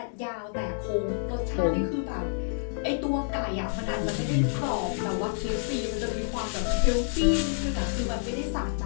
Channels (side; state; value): right; silent; digital silence